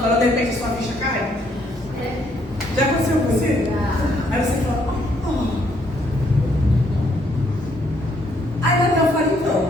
de repente a sua ficha cai? Já aconteceu com você? Aí você fala, Aí Natal fala,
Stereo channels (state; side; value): normal; both; correlation 0.69